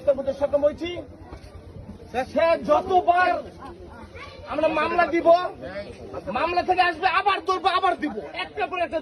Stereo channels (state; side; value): identical; both; correlation 1.00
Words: করতে সক্ষম হয়েছি। সে যতবার আমরা মামলা দিব, মামলা থেকে আসবে আবার ধরবো, আবার দিব, একটা পর একটা